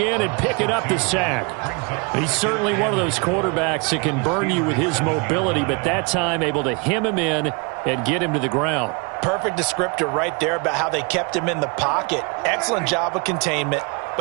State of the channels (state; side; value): quieter; left; 31.2 dB